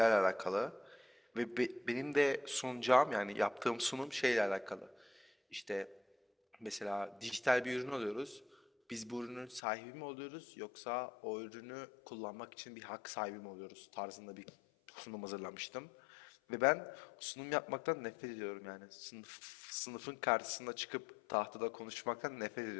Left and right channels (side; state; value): right; drops out; at 9.6 s